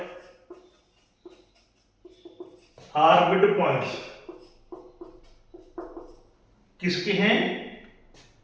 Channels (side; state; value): both; identical; correlation 1.00